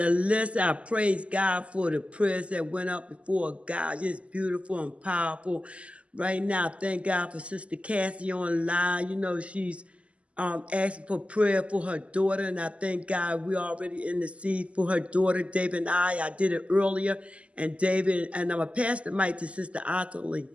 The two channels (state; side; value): late; left; 0.060 ms